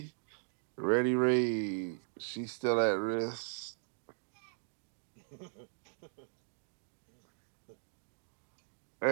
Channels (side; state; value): left; silent; digital silence